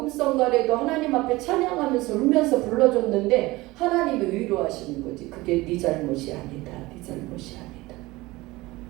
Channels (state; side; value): quieter; left; 20.4 dB